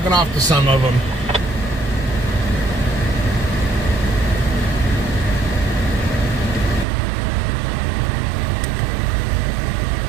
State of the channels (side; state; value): left; drops out; at 6.9 s